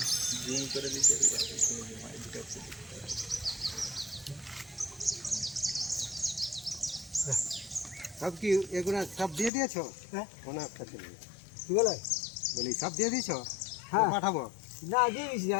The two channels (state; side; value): drops out; right; at 9.5 s